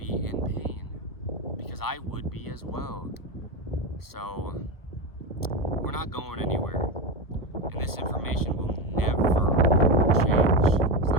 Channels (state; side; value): late; right; 1.3 ms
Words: in pain, because I would be as well. So, we're not going anywhere, and this information will never change. It's